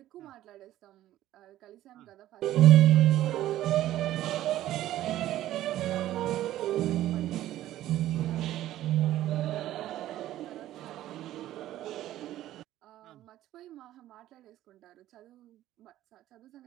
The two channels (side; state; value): left; quieter; 13.8 dB